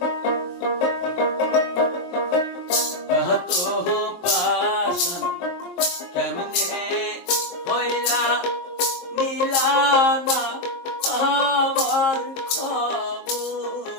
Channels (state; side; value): late; right; 22 ms